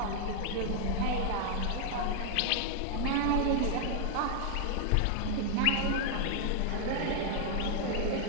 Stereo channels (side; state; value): both; different; correlation 0.00